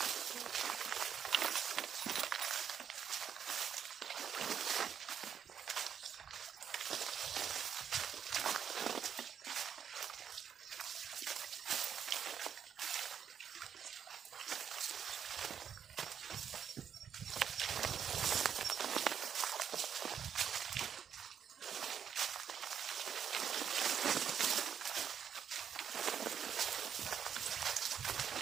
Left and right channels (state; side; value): quieter; left; 8.1 dB